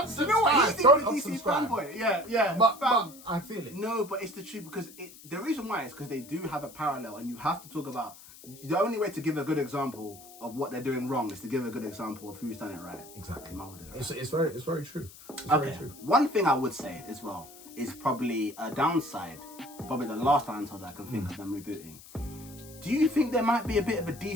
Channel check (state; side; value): noise; left; hiss, 19 dB below the sound